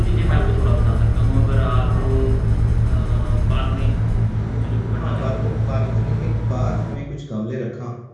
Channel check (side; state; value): both; identical; correlation 1.00